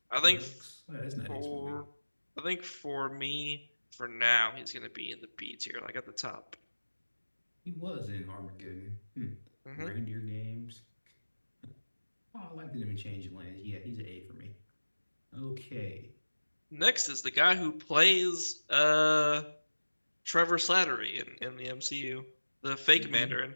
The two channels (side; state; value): both; inverted; correlation -1.00